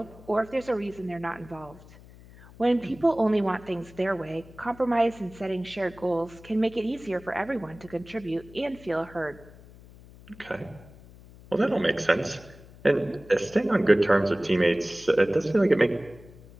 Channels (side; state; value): left; noise; hum, 21 dB below the sound